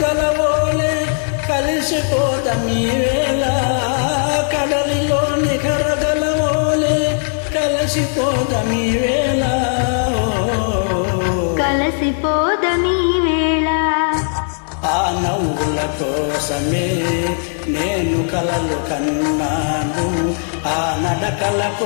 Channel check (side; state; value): right; silent; 68 dB below the other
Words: కలిసిపోదమీ వేళ, కడలిలోని కరగలవోలే కలిసిపోదమీ వేళ, కలిసిపోదమీ వేళ. ఆ నవ్వుల కోసమే నేను కలలు కన్నాను, ఆ నడకల